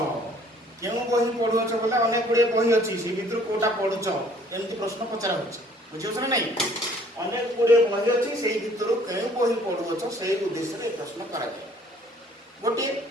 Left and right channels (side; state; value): both; normal; correlation 0.57